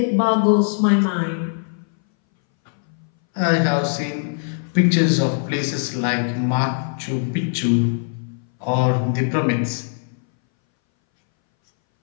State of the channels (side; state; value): right; silent; 62 dB below the other